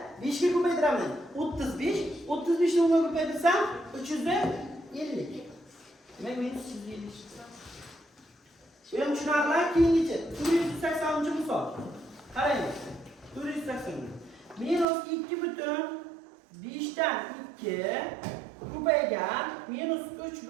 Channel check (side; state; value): left; drops out; at 14.9 s